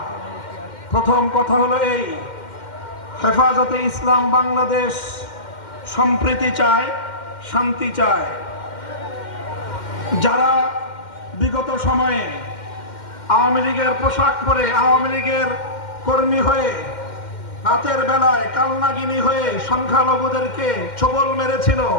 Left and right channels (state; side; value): late; right; 2.1 ms